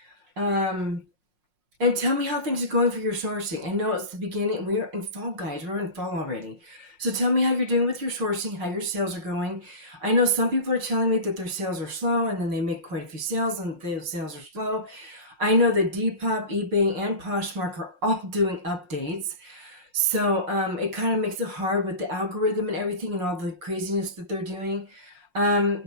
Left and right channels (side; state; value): left; late; 5.5 ms